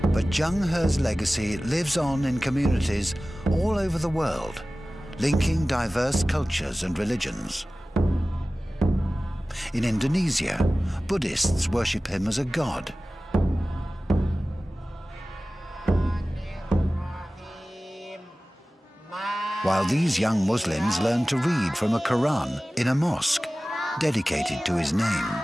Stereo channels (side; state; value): both; normal; correlation 0.97